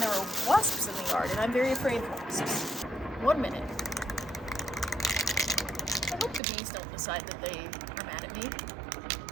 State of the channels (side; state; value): left; drops out; at 6.4 s